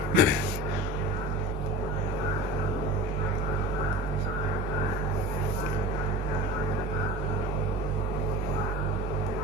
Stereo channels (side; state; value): both; normal; correlation 0.34